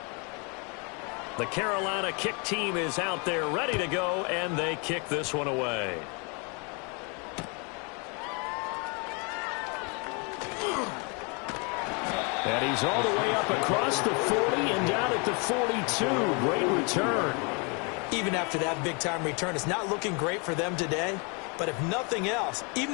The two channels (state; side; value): quieter; right; 33.3 dB